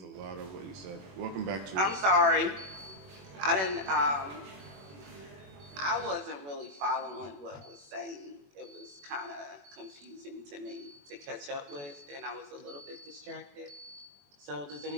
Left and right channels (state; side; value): late; left; 21 ms